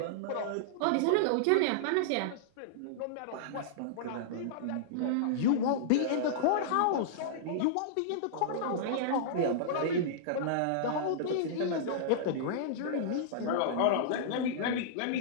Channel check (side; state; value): both; different; correlation -0.02